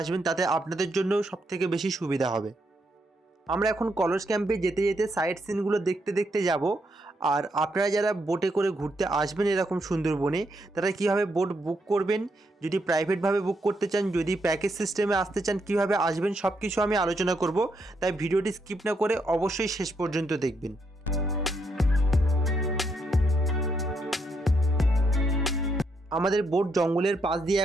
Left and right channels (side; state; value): both; normal; correlation 0.78